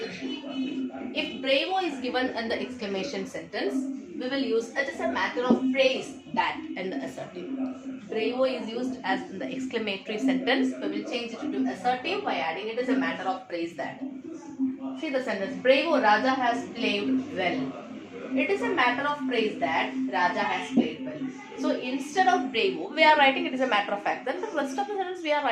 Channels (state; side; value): identical; both; correlation 1.00